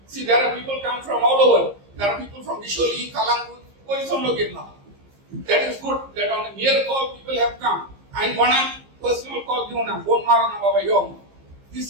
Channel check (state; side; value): late; left; 15 ms